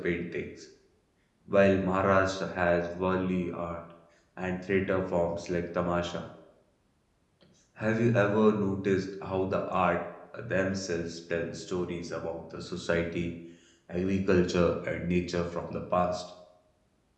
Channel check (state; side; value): identical; both; correlation 1.00